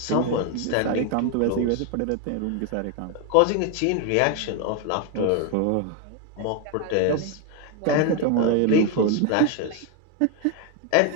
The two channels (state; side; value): different; both; correlation 0.01